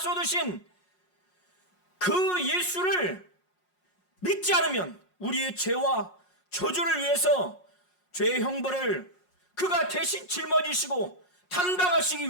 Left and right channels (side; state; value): right; late; 5.5 ms